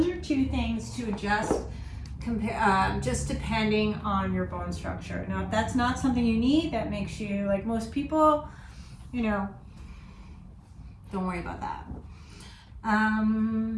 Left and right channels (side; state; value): both; identical; correlation 1.00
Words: are two things to adjust, just depending on your bone structure. Now, if that's not something you need, that makes you, like most people, you know, don't worry about that.